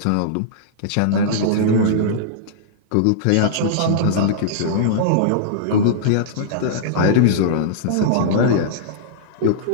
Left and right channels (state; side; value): different; both; correlation -0.02